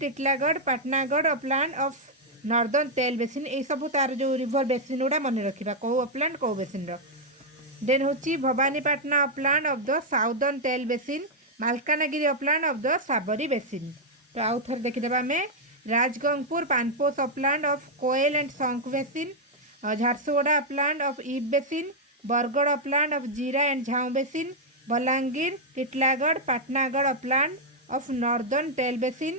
Patnagarh upland of northern Tel basin. ये सब तार जो रिवर बेसिन गुड़ा मन रखा कौ अपलैंड कौ बेसिन। देन होची Bhawanipatna upland of the southern Tel basin, Malkangiri upland of the Sabari basin. तो आउ थर देखिदेबा आमे Rajgangpur Panposh upland of Koel and Sankh basin, Jharsuguda upland of Ib basin, Bargarh upland of Jira and Jhau basin, Balangir, Titlagarh, Patnagarh upland of northern Tel basin,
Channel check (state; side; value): normal; both; correlation -0.02